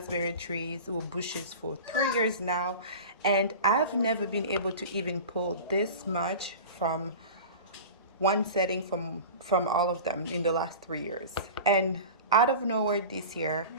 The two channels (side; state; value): both; inverted; correlation -0.34